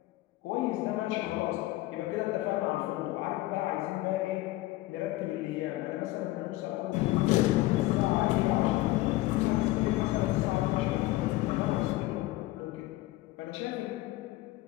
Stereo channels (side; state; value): right; quieter; 18.0 dB